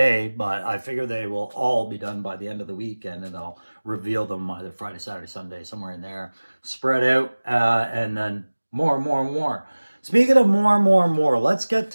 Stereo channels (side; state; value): both; inverted; correlation -1.00